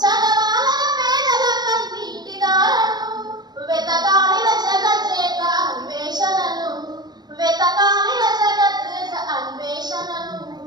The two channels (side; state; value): left; late; 0.20 ms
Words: చదవాలన పేదల కన్నీటి దారను, వెతకాలిన జగజ్జేత అన్వేషణను, వెతకాలిన జగజ్జేత అన్వేషణను.